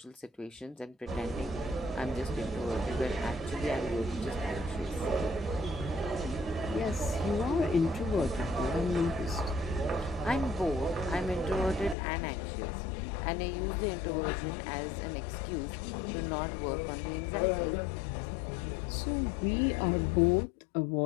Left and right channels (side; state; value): right; drops out; at 12.0 s